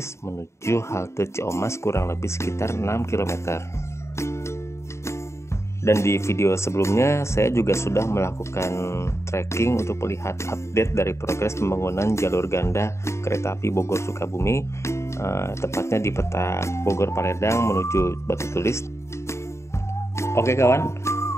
menuju halte Ciamas kurang lebih sekitar 6 km. Dan di video sebelumnya saya juga sudah melakukan trekking untuk melihat update dari progres pembangunan jalur ganda kereta api Bogor Sukabumi, tepatnya di peta Bogor Paledang menuju Batu Tulis. Oke kawan,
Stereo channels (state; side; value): late; right; 0.13 ms